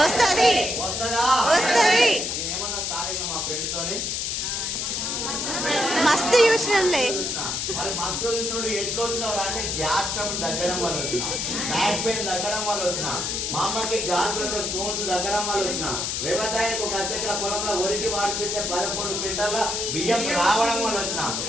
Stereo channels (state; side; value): noise; left; hiss, 1 dB below the sound